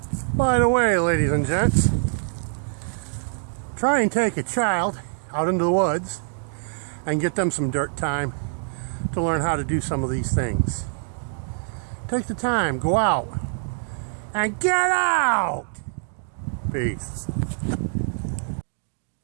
By the way, ladies and gents, Try and take a child out into the woods and get them some dirt time to learn how to do some of these things. Take the time, go out, and get out! Peace.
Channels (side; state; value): left; silent; digital silence